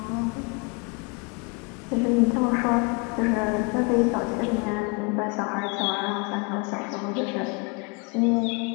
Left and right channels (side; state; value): right; quieter; 32.1 dB